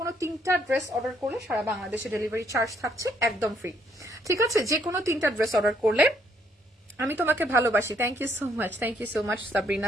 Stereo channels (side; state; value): both; normal; correlation 0.69